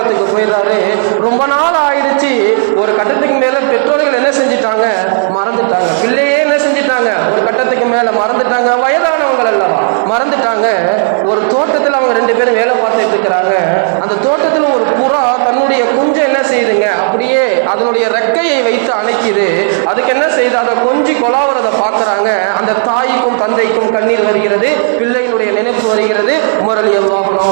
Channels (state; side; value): silent; left; digital silence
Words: போயிடுறாரு. ரொம்ப நாள் ஆயிடுச்சு. ஒரு கட்டத்துக்கு மேல பெற்றோர்கள் என்ன செஞ்சிட்டாங்க? மறந்துட்டாங்க. பிள்ளையே என்ன செஞ்சிட்டாங்க? ஒரு கட்டத்துக்கு மேல மறந்துட்டாங்க. வயதானவங்கள் அல்லவா, மறந்துட்டாங்க. ஒரு தோட்டத்தில் அவங்க ரெண்டு பேரும் வேலை பார்த்துட்டு இருக்கிறாங்க. அந்த தோட்டத்தில் ஒரு புறா தன்னுடைய குஞ்சை என்ன செய்யுதுங்க? அப்படியே அதனுடைய ரெக்கையை வைத்து அணைக்குது. அதுக்கு என்ன செய்யுது? அதை கொஞ்சி கொலாவறதை பார்க்கறாங்க. அந்த தாய்க்கும் தந்தைக்கும் கண்ணீர் வருகிறது, பிள்ளையினுடைய நினைப்பு வருகிறது. உமர் ரலியல்லாஹு